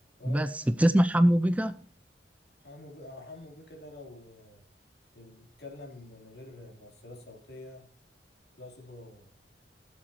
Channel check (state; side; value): normal; both; correlation 0.95